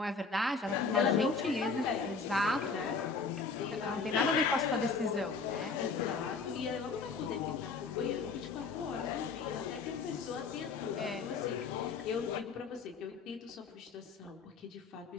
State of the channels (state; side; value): quieter; right; 4.6 dB